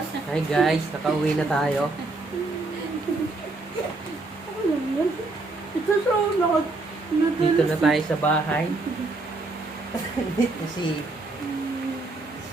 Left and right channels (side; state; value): left; quieter; 3.3 dB